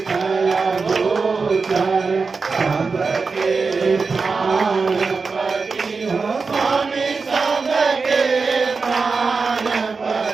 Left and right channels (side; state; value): left; quieter; 4.6 dB